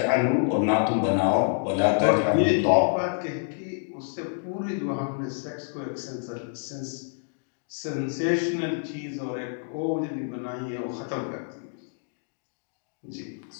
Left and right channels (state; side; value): silent; right; digital silence